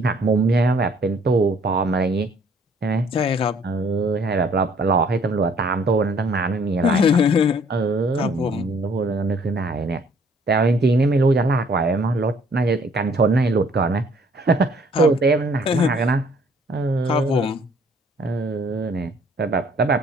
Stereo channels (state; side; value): normal; both; correlation 0.60